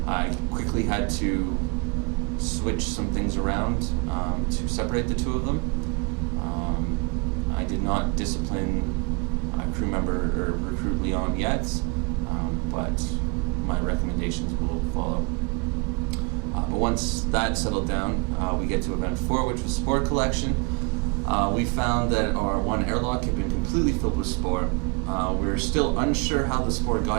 I quickly had to switch some things around to separate the two of them. I did not discipline crew member or recruit Leon yet, but my recommendations will follow. But once that settled down, we get to event 4, which was spore collection. We found that our one airlock had been completely filled with spore. We're still unsure how the spore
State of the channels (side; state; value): left; quieter; 31.0 dB